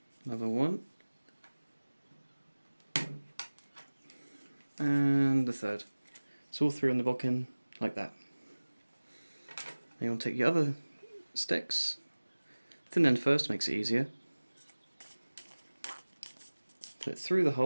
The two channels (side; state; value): both; inverted; correlation -1.00